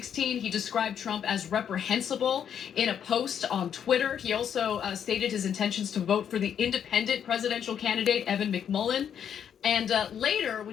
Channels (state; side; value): quieter; right; 8.5 dB